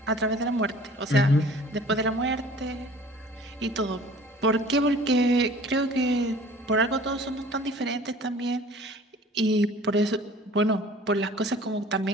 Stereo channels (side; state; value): both; normal; correlation 0.48